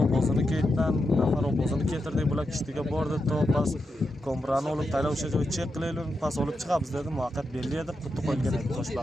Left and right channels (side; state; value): both; normal; correlation 0.86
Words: o'zini ketdan, nafar o'zini ketirdi, bular kishtiga bordi, to pas kombrani olib taylab o'sha joy chek qilaylik, pas olib chiqamiz dedi. Muvaqqat belli edi, qutni qo'ygan edi